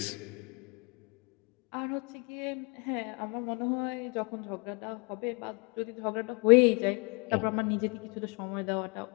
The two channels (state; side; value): quieter; right; 33.3 dB